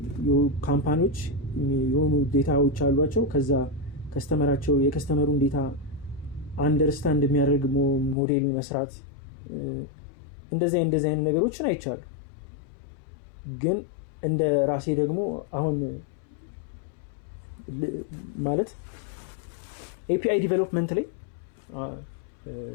ካምፓኒዎች የሆኑ ዴታዎች አሏቸው። ከዛ የከስተመሩን ዴታ አንደርስታንድ የሚያደርግ ሞዴል መስራት እንደዚህ አይነት ነገሮችን አይቻሉ። ግን እንደ ራሴ ደግሞ አሁን ማለት ኤፒአይ ዲቨሎፕመንት ላይ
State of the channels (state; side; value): drops out; right; at 8.2 s